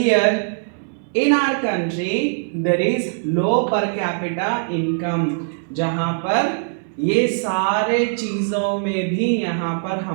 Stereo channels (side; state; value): left; silent; 65 dB below the other